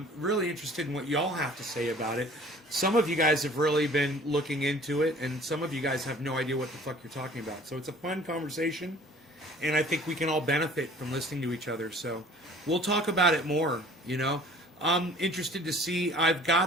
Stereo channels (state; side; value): normal; both; correlation 0.50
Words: really interested in what y'all have to say about it. Some of you guys have really been looking into it, and some of you guys have no idea what the fuck you're talking about. So it's a fun conversation, and I think we can all benefit from listening to each other. So we'll talk about it more, you know. I'm interested to see. I've